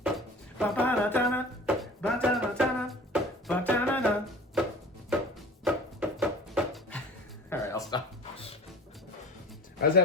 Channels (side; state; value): both; normal; correlation 0.41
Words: All right, I'll stop. I was